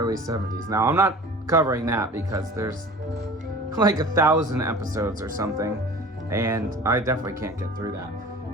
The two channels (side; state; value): both; normal; correlation 0.42